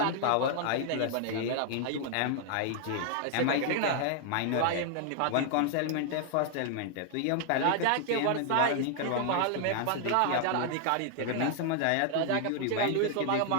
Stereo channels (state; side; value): different; both; correlation 0.00